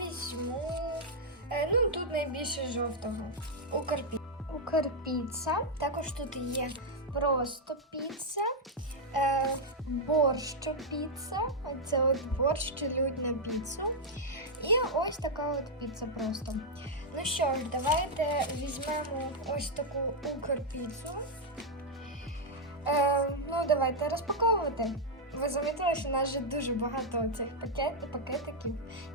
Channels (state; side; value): normal; both; correlation -0.02